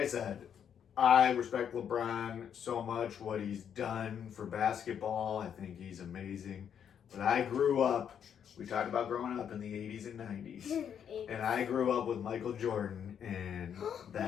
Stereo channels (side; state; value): right; quieter; 8.4 dB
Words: said, I respect LeBron so much, what he's done for basketball. I think he's amazing. But I grew up, we talked about growing up in the 80s and 90s. And I grew up with Michael Jordan, and